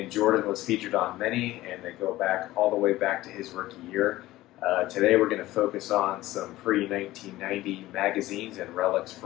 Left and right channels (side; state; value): right; quieter; 16.7 dB